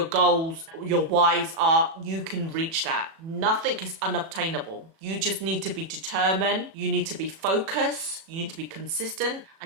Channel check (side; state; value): left; late; 37 ms